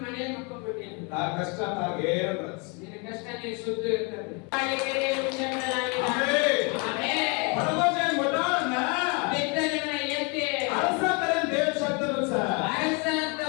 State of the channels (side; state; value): right; quieter; 31.7 dB